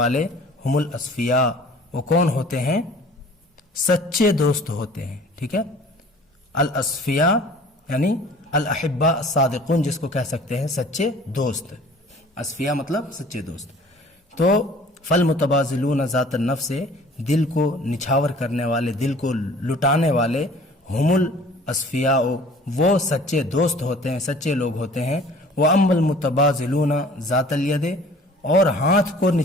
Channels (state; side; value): normal; both; correlation 0.49